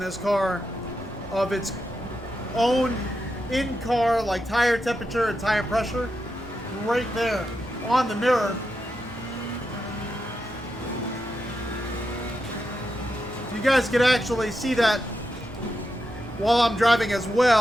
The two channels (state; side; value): normal; both; correlation 0.86